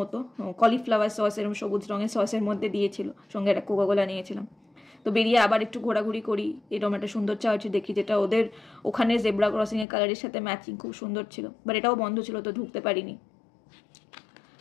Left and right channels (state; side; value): drops out; right; at 9.9 s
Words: কলিফ্লাওয়ার সস এরকম সবুজ রঙের সসের মধ্যে দিয়েছিল, সঙ্গে একটা কোকাকোলা নিয়েছিলাম। তো বেরিয়ে আবার একটু ঘোরাঘুরি করি, এরকম একটা সুন্দর চার্চ দেখি যেটা ওদের ওখানে জেব্রা ক্রসিংয়ের কালারের সাথে ম্যাচিং, খুব সুন্দর ছিল। বাট এটাও বন্ধ ছিল, তো ঢুকতে পারিনি।